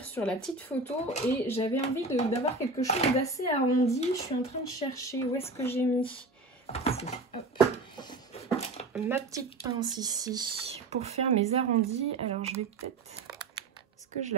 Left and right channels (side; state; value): left; quieter; 3.2 dB